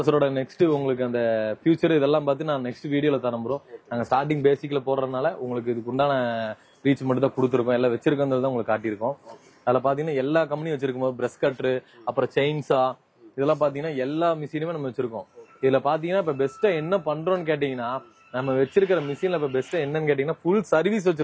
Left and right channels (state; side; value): identical; both; correlation 1.00